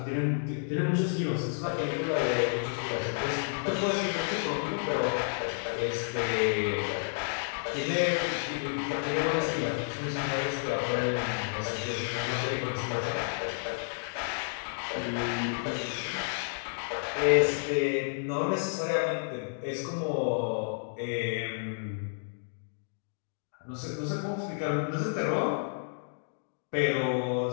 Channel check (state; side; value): silent; right; digital silence